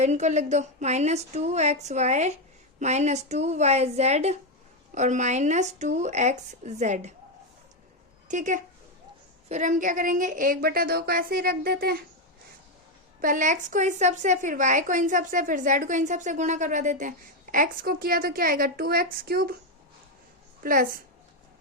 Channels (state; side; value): normal; both; correlation 0.06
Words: इनको लिख दो माइनस 2xy माइनस 2yz और माइनस 2xz। ठीक है, फिर हम क्या करेंगे 1/2 को ऐसे ही रख देते हैं, पहले x को इस सब से, फिर y को इन सब से, फिर z को इन सब से गुणा करवा देते हैं। x को किया तो क्या आएगा 2x cube plus